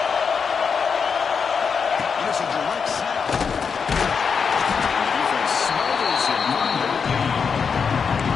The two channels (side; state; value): right; quieter; 6.0 dB